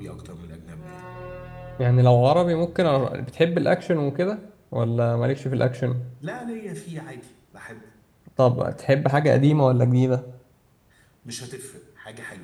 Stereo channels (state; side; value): identical; both; correlation 1.00